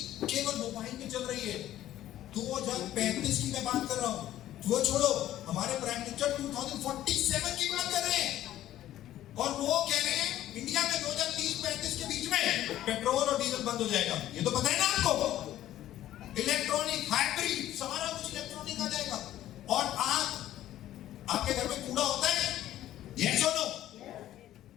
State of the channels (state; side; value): quieter; right; 13.2 dB